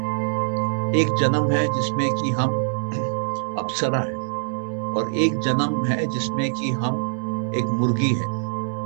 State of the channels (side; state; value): left; silent; digital silence